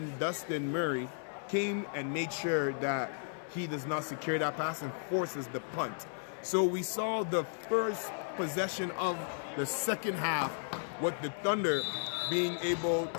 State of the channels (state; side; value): silent; right; 55 dB below the other